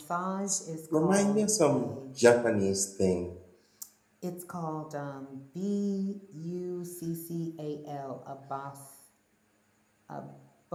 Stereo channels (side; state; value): both; identical; correlation 1.00